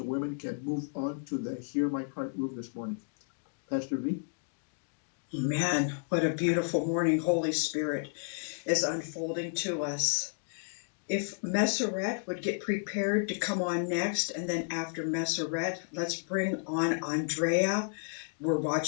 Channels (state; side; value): silent; right; digital silence